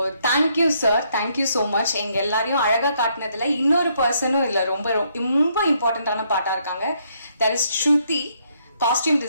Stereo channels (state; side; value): inverted; both; correlation -0.72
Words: thank you sir, thank you so much. எங்க எல்லாரையும் அழகா காட்டினதுல இன்னொரு பர்சனும் இல்லை, ரொம்ப ரொம்ப இம்பார்ட்டன்டான பாட்டா இருக்காங்க. That is Shruti, costume